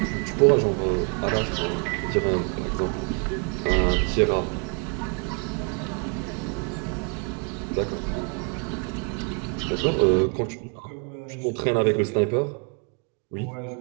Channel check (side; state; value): left; quieter; 35.9 dB